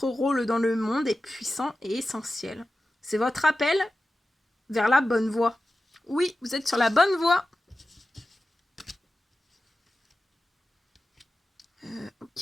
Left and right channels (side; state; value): both; normal; correlation 0.94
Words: rôle dans le monde est puissant et essentiel. C'est votre appel vers la bonne voie. Oui, vous êtes sur la bonne voie.